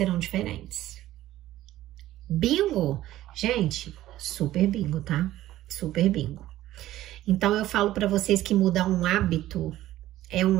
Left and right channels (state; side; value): quieter; left; 14.5 dB